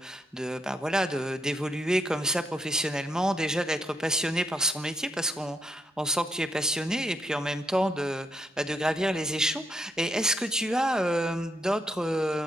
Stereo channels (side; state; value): both; normal; correlation 0.78